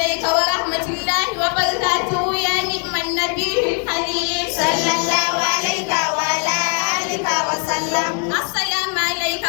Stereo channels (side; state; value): right; quieter; 40.0 dB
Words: ورحمة الله وبركاته يا نعم النبي الحليم. صلى الله عليك وعلى آلك وسلم. السلام عليك